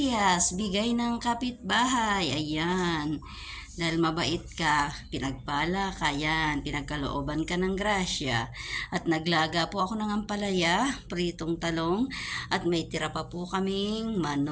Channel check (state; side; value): identical; both; correlation 1.00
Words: bigay ng kapitbahay. Ayan. Dahil mabait ka, pinagpala ka, yan, pinagkalooban ka ng grasya. At naglaga po ako ng ampalaya, pritong talong, at may tira pa po kaming